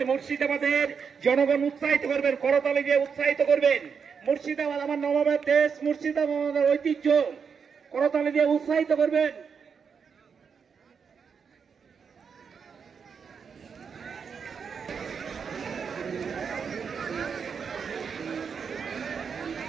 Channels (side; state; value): left; quieter; 6.3 dB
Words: মুর্শিদাবাদের জনগণ উৎসাহিত করবেন, করতালি দিয়ে উৎসাহিত করবেন। মুর্শিদাবাদ আমার নবাবের দেশ, মুর্শিদাবাদ আমাদের ঐতিহ্য, করতালি দিয়ে উৎসাহিত করবেন।